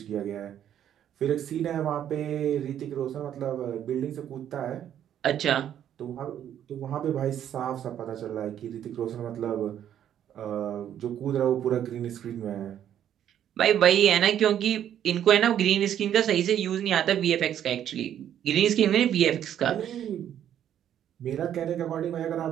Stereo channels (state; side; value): quieter; left; 10.3 dB